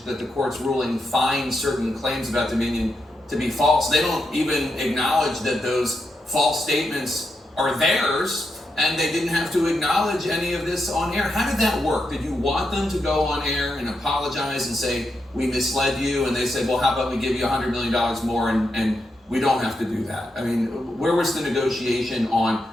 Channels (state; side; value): normal; both; correlation 0.84